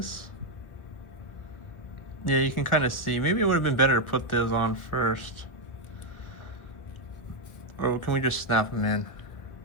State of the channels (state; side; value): late; right; 1.6 ms